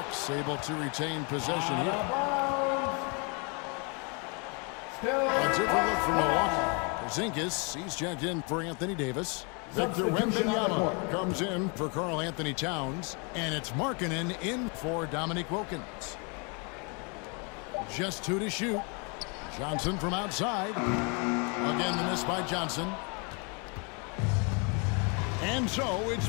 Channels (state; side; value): quieter; right; 33.9 dB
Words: able to retain possession here. A different look from Milwaukee. Porzingis, he's checked in for Anthony Davis. Victor Wembanyama comes in for Karl Anthony Towns. And it's Markkanen in for Dominique Wilkins. Just 2 to shoot. Johnson from outside. Again, the miss by Johnson. And so it's